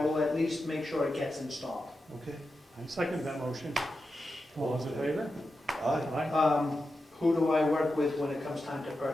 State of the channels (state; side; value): normal; both; correlation 0.90